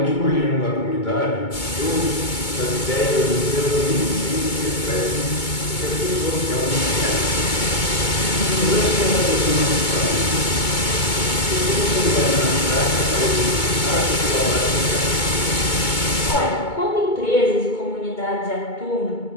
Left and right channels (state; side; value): late; right; 2.2 ms